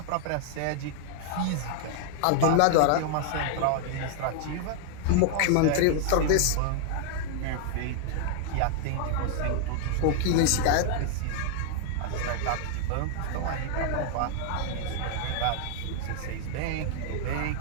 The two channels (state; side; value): different; both; correlation 0.00